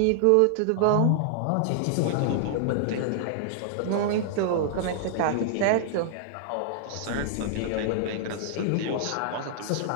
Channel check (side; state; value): both; different; correlation -0.01